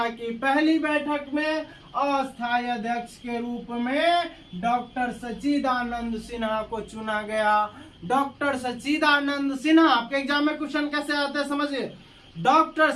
की पहली बैठक में अस्थायी अध्यक्ष के रूप में डॉक्टर सच्चिदानंद सिन्हा को चुना गया। डॉक्टर सच्चिदानंद सिन्हा, आपके एग्जाम में क्वेश्चन कैसे आते हैं समझिए। डॉक्टर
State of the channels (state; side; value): identical; both; correlation 1.00